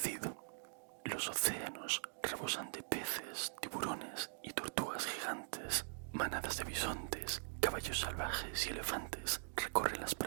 Los océanos rebosan de peces, tiburones y tortugas gigantes. Manadas de bisontes, caballos salvajes y elefantes recorren las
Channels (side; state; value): left; silent; digital silence